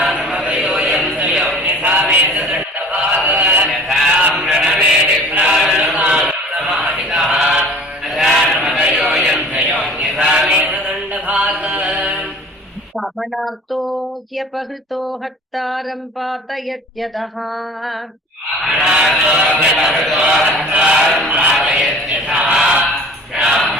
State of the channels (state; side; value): normal; both; correlation 0.45